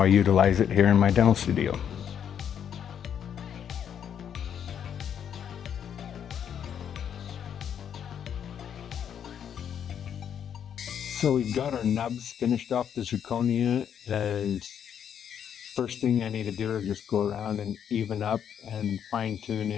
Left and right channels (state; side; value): quieter; right; 8.6 dB